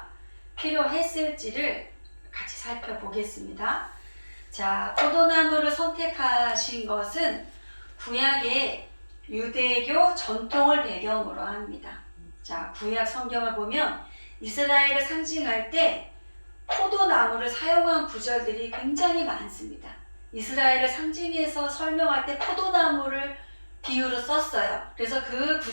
필요했을지를 같이 살펴보겠습니다. 자, 포도나무를 선택하신 것은 구약의 유대교 전통을 배경으로 합니다. 자, 구약 성경을 보면 이스라엘을 상징할 때 포도나무를 사용한 구절들이 굉장히 많습니다. 이스라엘을 상징해서 설명할 때 포도나무를 비유로 썼어요. 그래서 그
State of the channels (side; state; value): both; inverted; correlation -1.00